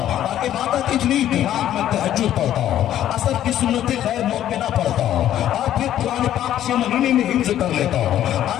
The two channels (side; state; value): right; quieter; 11.8 dB